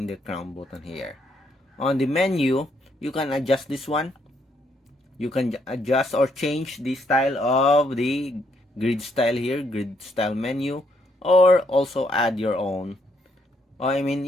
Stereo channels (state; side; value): normal; both; correlation 0.73